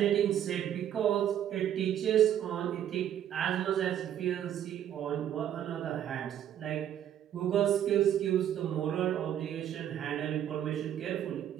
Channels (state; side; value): quieter; left; 10.5 dB